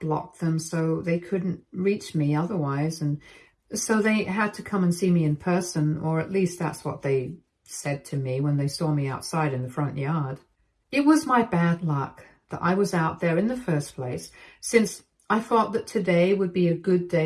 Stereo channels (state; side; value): identical; both; correlation 1.00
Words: blocked them so they couldn't reach me otherwise, and so they had to come and see me in person, or at least that's what they said to me when they saw me outside in the front yard. It was my bad luck that I was out there in the first place, since I thought that today would be a good